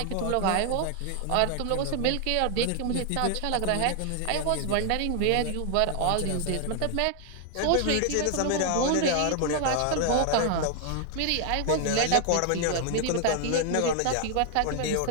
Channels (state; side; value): different; both; correlation 0.00